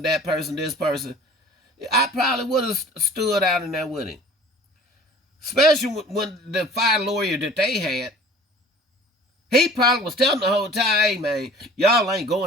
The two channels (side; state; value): both; normal; correlation 0.47